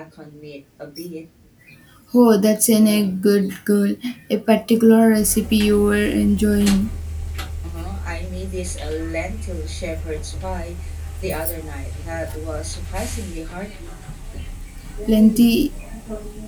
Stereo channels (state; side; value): identical; both; correlation 1.00